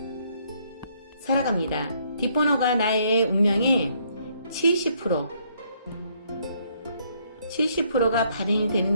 살아갑니다. 뒷번호가 나의 운명의 70%가 발현이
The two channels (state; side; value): inverted; both; correlation -0.69